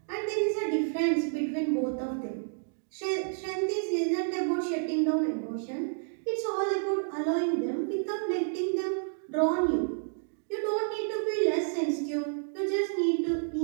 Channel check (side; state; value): left; silent; digital silence